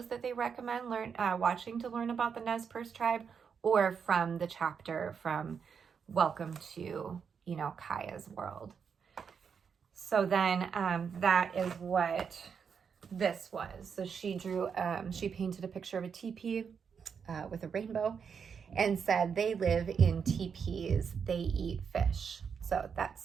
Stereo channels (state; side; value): quieter; left; 6.6 dB